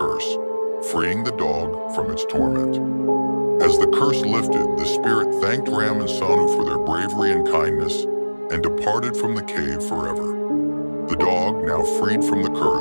freeing the dog from its torment. As the curse lifted, the spirit thanked Ram and Sonu for their bravery and kindness and departed from the cave forever. The dog, now freed from the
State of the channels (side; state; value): both; inverted; correlation -1.00